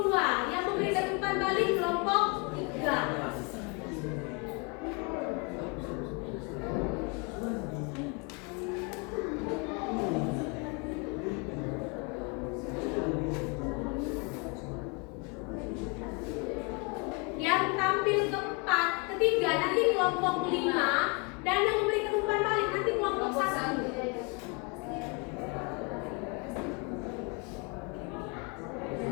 2 yang memberikan umpan balik kelompok 3. Yang tampil keempat, ketiga nanti kelompok 5 dan yang memberikan umpan balik nanti kelompok 1.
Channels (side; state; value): right; quieter; 32.4 dB